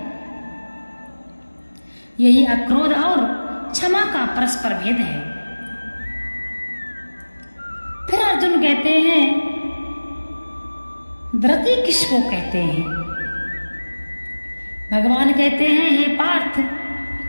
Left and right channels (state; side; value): inverted; both; correlation -1.00